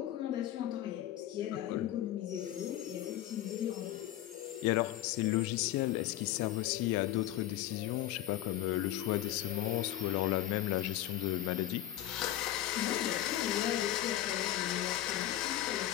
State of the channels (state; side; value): quieter; right; 13.3 dB